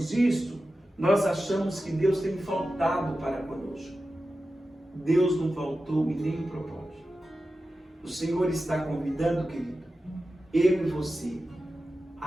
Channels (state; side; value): normal; both; correlation 0.93